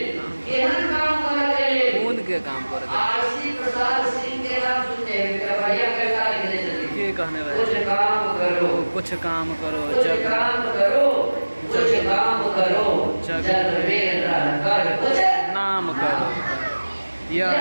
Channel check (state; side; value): inverted; both; correlation -1.00